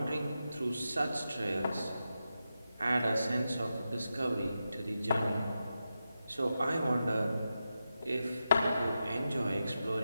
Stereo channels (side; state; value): both; inverted; correlation -0.89